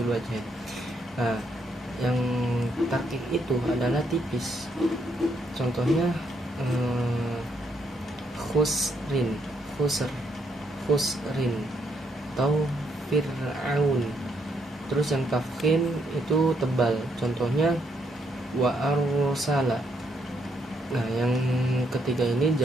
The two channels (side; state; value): both; normal; correlation 0.75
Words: wajh. Nah, yang tarkik itu adalah tipis. Contohnya khusrin, khusrin atau fir'aun. Terus yang tafkhim itu tebal. Contohnya wa arsala. Nah, yang ketiga ini